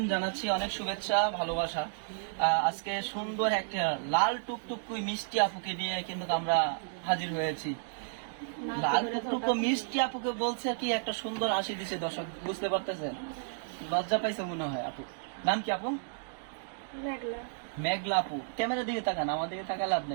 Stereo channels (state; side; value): silent; left; digital silence